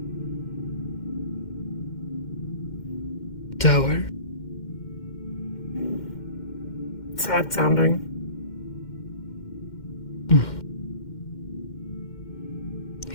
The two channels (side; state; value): right; late; 2.1 ms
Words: Dower? Sad sounding.